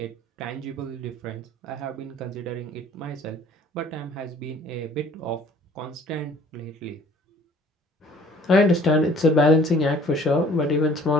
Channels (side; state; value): both; normal; correlation 0.54